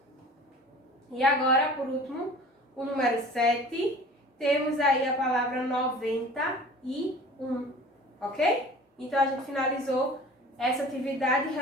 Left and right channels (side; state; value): both; normal; correlation 0.43